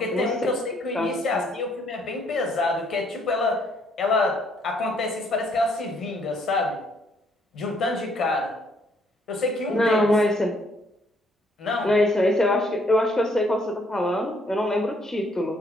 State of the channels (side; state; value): both; normal; correlation 0.67